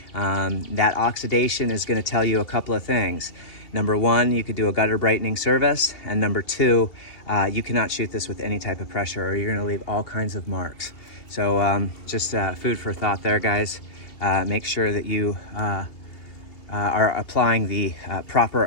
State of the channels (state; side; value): late; right; 2.7 ms